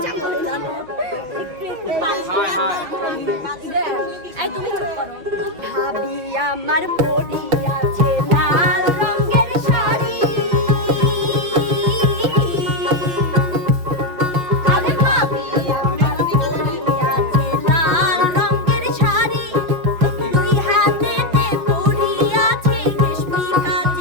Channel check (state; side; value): late; left; 5.4 ms